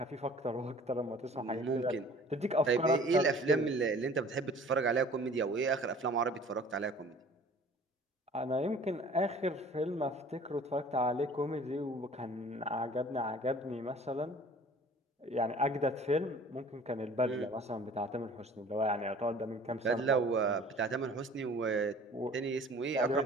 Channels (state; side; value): normal; both; correlation 0.49